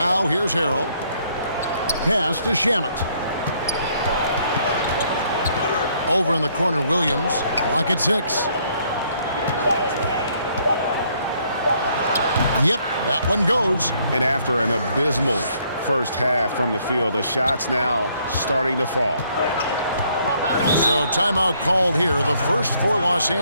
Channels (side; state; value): both; inverted; correlation -0.67